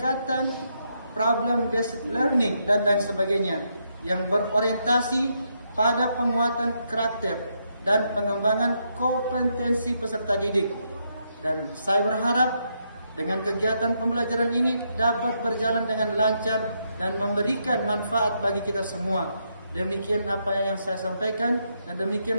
problem based learning dan lain sebagainya yang berorientasi pada penguatan karakter dan pengembangan kompetensi peserta didik. Dan saya berharap dengan kegiatan pembelajaran ini dapat berjalan dengan lancar dan memberikan manfaat bagi kita semua. Demikian apa yang saya sampaikan dan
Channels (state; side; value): inverted; both; correlation -0.78